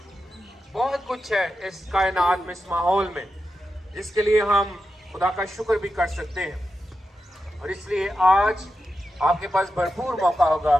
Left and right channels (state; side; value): normal; both; correlation 0.89